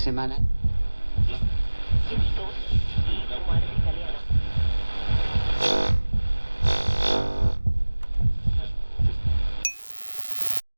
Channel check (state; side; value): inverted; both; correlation -1.00